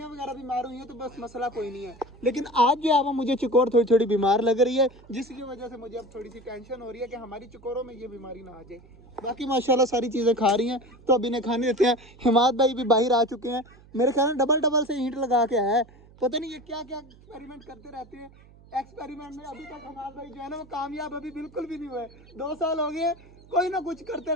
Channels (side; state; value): right; noise; hum, 24 dB below the sound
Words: वगैरह बीमार हुई हैं तो बस मसला कोई नहीं है, लेकिन आज जो है वो मुझे चकोर थोड़ी थोड़ी बीमार लग रही है, जिसकी वजह से मुझे अब थोड़ी सी टेंशन हो रही है कि हमारी चकोरों में ये बीमारी ना आ जाए। बाकी माशाल्लाह सारी चीज़ें खा रही हैं, तो अब इन्हें खाने देते हैं। हिमाद भाई भी बाहर आ चुके हैं, मेरे ख्याल में डबल डबल से ईंट लगा के आया है, पता नहीं ये क्या क्या एक्सपेरिमेंट करते रहते हैं। एक्सपेरिमेंट में अभी तक हिमाद भाई जो है ना वो कामयाब अभी बिल्कुल भी नहीं हुए। 2 साल हो गए कोई ना कुछ करते